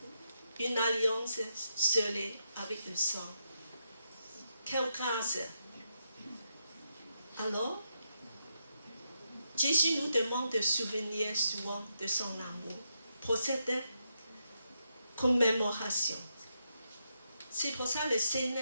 Une alliance scellée avec le sang. Quelle grâce! Alors, Jésus nous demande de souvenir souvent de son amour pour cette commémoration. C'est pour ça que le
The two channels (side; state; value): both; inverted; correlation -0.82